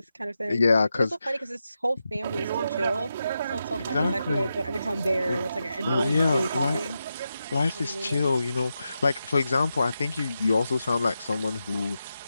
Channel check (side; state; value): both; inverted; correlation -0.88